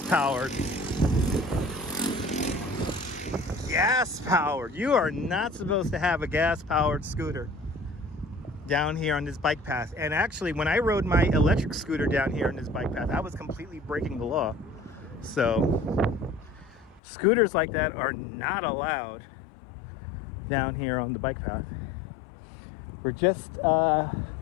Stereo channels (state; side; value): drops out; right; at 17.0 s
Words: powered. Gas powered. You are not supposed to have a gas powered scooter down here on this bike path. And actually, when I rode my electric scooter down here on this bike path, I was completely breaking the law. So scooters like that are not allowed down here on the bike path. We're just